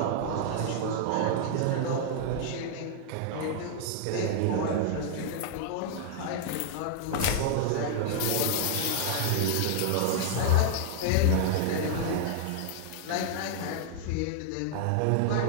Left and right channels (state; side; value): different; both; correlation -0.01